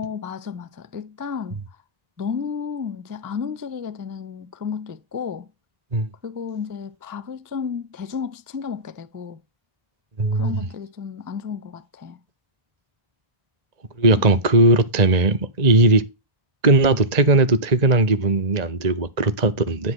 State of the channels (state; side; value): late; left; 1.9 ms